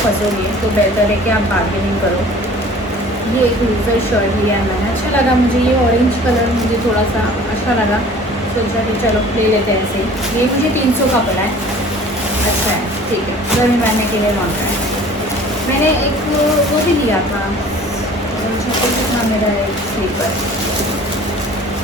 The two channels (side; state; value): both; normal; correlation 0.47